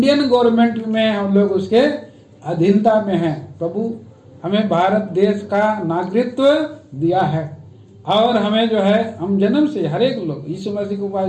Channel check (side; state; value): both; identical; correlation 1.00